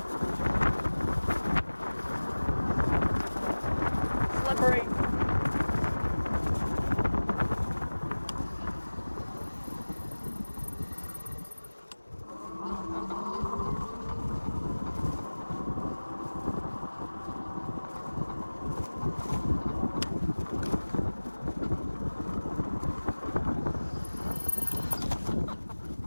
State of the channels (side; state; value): both; inverted; correlation -1.00